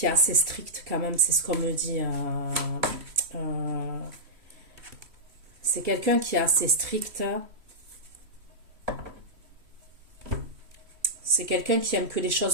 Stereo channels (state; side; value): late; left; 3.1 ms